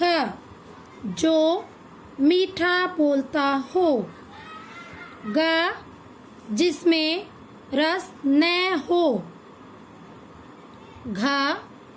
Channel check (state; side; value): identical; both; correlation 1.00